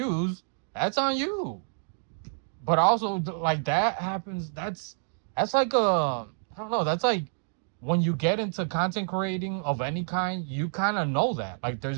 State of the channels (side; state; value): left; silent; digital silence